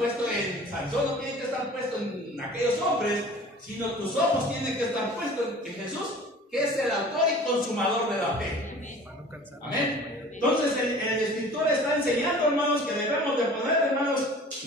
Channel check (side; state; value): both; normal; correlation 0.45